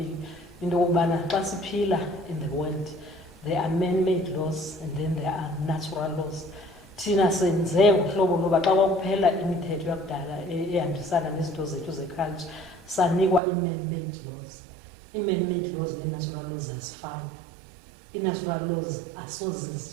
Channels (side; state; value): left; drops out; at 13.4 s